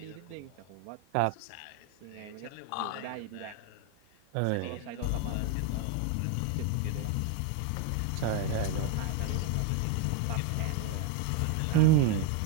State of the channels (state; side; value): different; both; correlation 0.01